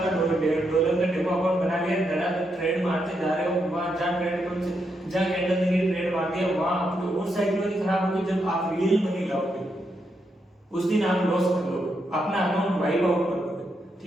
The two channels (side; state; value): both; normal; correlation 0.81